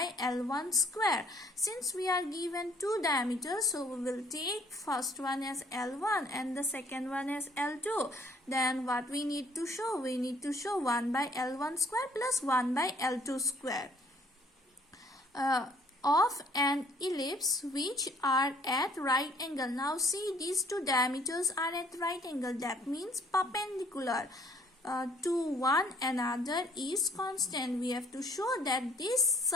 L1 square. Since we are given two diameters, so we will take first one as L1 and the second one as L2. Then what we need to show? We need to show 1 by L1 square plus 1 by L2 square. Of an ellipse which are at right angle. Now see, these two diameters are at right angle. That means perpendicular to one another is constant. We have to show that this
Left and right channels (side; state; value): both; normal; correlation 0.60